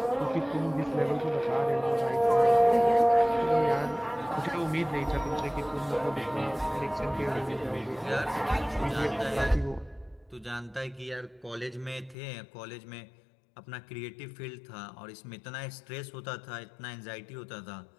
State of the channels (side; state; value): right; drops out; at 12.2 s